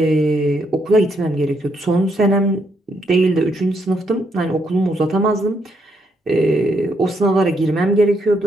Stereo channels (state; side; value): normal; both; correlation 0.76